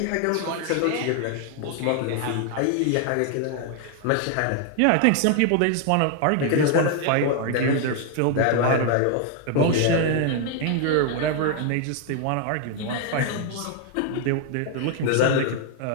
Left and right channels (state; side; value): different; both; correlation 0.00